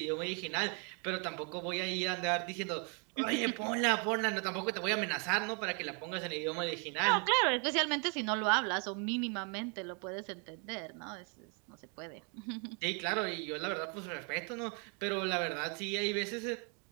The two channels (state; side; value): quieter; left; 36.6 dB